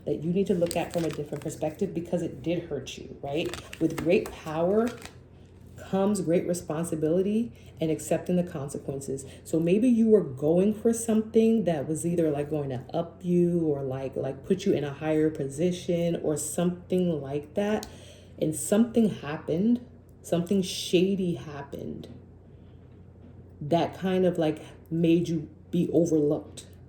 because it did hurt you, right? With great power comes great responsibility and accepting the consequences. So maybe you were going for something that was either like going to up you, or like put you in a higher position, or something like that. And something happened, something shady happened that kind of like made you be overlooked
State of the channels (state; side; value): identical; both; correlation 1.00